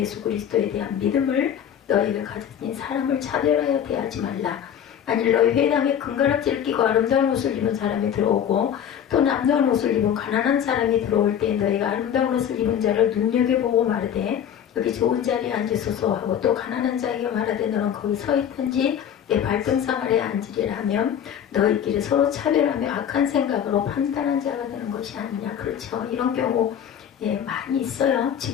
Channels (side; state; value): right; quieter; 9.1 dB